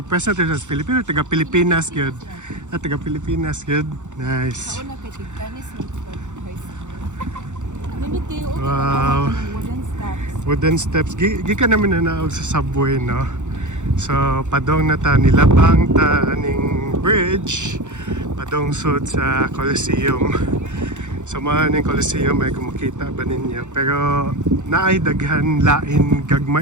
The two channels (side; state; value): left; late; 0.85 ms